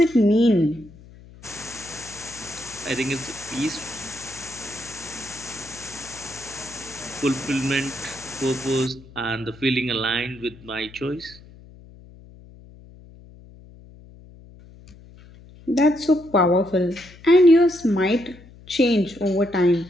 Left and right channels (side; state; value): left; noise; hum, 21 dB below the sound